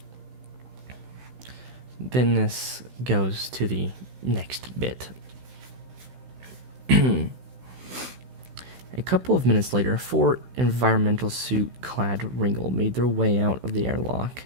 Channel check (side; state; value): left; late; 16 ms